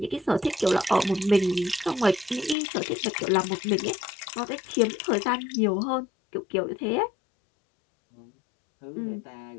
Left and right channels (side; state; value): right; drops out; at 2.6 s